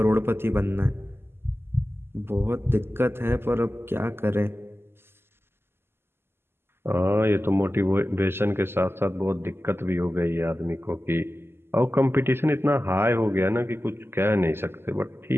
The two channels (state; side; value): late; left; 0.12 ms